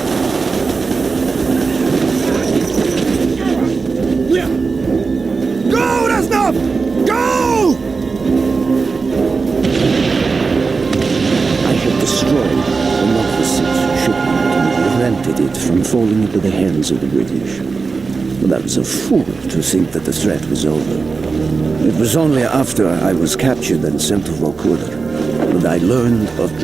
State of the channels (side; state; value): left; quieter; 4.5 dB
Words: Yeah! Go, Reznov! Go! I had destroyed the Novossich shipment and prevented it from falling into the hands of the British. But I was a fool to think that the threat was over. It was only after I was captured and sent to Vorkuta that I learned of